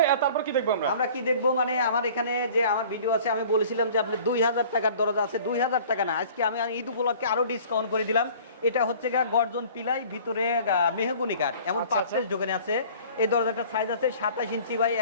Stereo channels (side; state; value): both; inverted; correlation -0.48